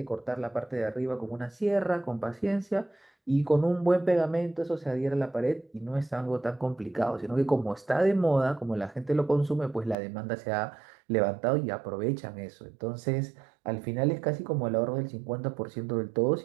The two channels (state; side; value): drops out; left; at 10.0 s